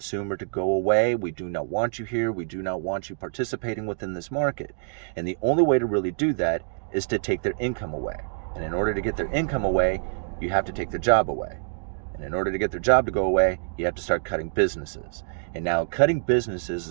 to go away. We do not want you here. We do not want you participating within this market. And the only way to really do that is to take their income away. And in order to get their income away, you have to take their job away. And in order to get their job to go away, you have to start cutting businesses. And now cutting businesses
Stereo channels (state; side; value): silent; left; digital silence